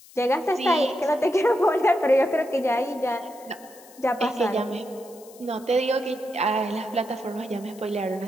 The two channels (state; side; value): noise; left; hiss, 23 dB below the sound